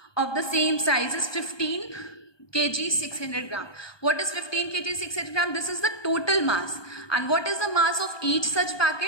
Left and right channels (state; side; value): late; right; 1.2 ms